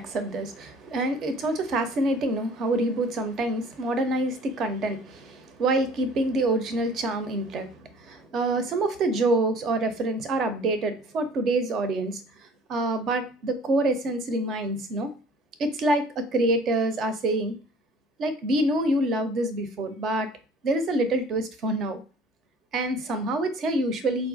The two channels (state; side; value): normal; both; correlation 0.50